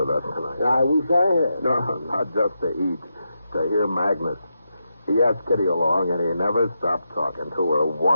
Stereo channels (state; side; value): inverted; both; correlation -0.86